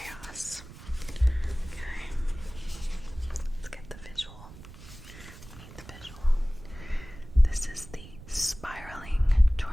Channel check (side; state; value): right; noise; rumble, 17 dB below the sound